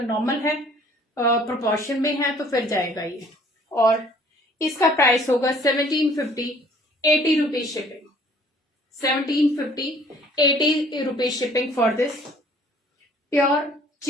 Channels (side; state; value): both; normal; correlation 0.56